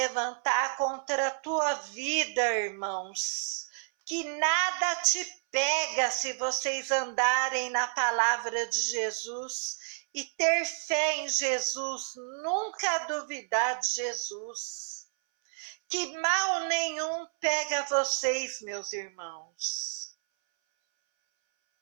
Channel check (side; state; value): left; silent; 58 dB below the other